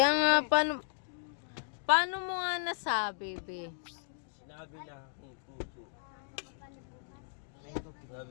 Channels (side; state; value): right; silent; digital silence